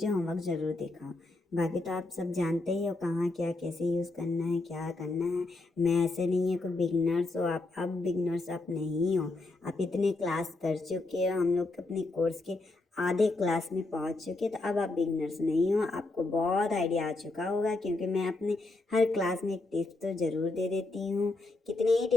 होमवर्क ज़रूर दिखाओ। बाकी तो आप सब जानते ही हो कहाँ क्या कैसे यूज़ करना है, क्या करना है। मैं ऐसे नहीं है कोई बिगनर्स हो आप, अब बिगनर्स आप नहीं हो। आप इतने क्लास कर चुके हो, हम लोग अपने कोर्स के आधे क्लास में पहुंच चुके, तो अब आप बिगनर्स नहीं हो, आपको बहुत आइडिया आ चुका होगा। क्योंकि मैं अपने हर क्लास में एक टिप्स तो ज़रूर दे देती हूँ, कितने ही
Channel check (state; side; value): quieter; right; 3.1 dB